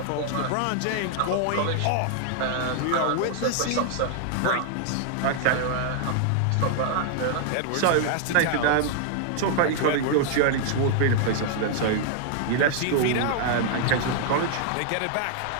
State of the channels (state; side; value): different; both; correlation 0.00